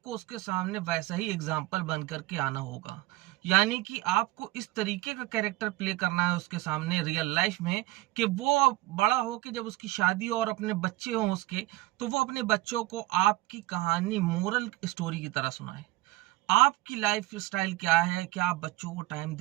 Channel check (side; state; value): left; quieter; 18.8 dB